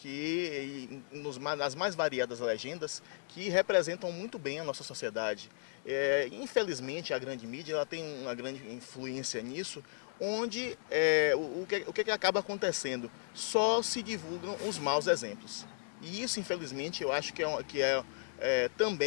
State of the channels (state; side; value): silent; right; 54 dB below the other